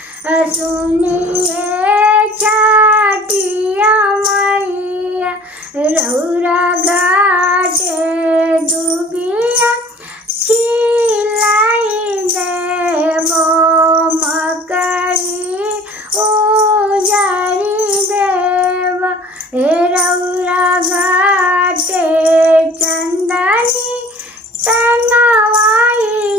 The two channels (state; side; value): normal; both; correlation 0.48